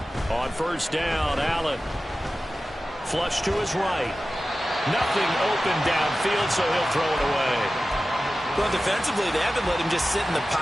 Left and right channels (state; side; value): normal; both; correlation 0.95